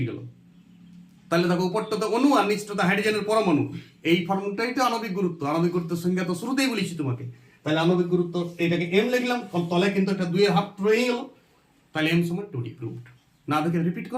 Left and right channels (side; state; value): both; identical; correlation 1.00